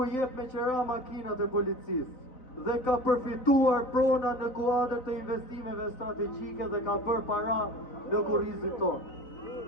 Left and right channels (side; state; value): right; late; 3.9 ms